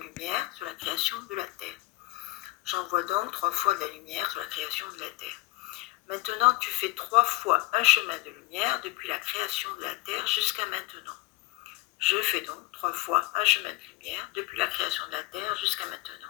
sur la création de la Terre. J'envoie donc 3 fois de la lumière sur la création de la Terre. Maintenant, tu fais 3 fois un chemin de lumière depuis la création de la Terre jusqu'à maintenant. Je fais donc 3 fois un chemin de lumière depuis la création de la Terre jusqu'à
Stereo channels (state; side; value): quieter; right; 20.7 dB